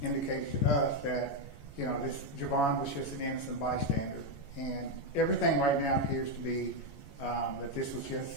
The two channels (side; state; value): right; late; 14 ms